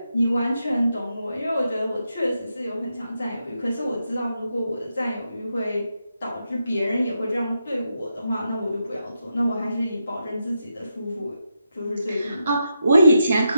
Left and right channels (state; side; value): inverted; both; correlation -0.84